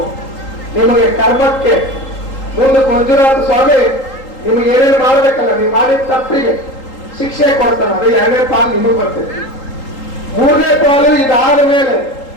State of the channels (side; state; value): right; late; 3.8 ms